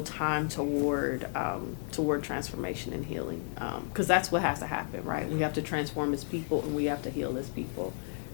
time toward transformation and healing, because that's what has to happen, right? We have to transform as people and we have to heal as people.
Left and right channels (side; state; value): right; silent; 56 dB below the other